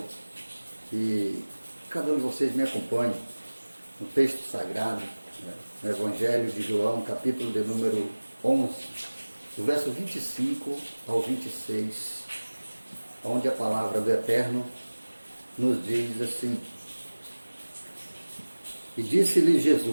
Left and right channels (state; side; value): inverted; both; correlation -1.00